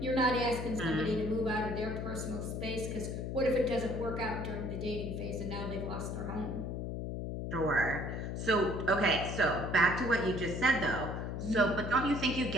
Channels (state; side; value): noise; left; hum, 4 dB below the sound